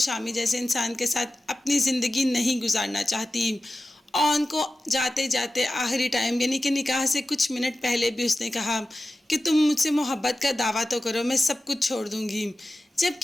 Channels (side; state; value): both; normal; correlation 0.95